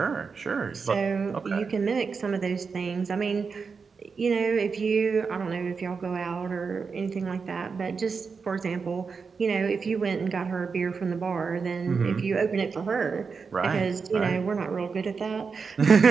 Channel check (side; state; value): left; quieter; 5.3 dB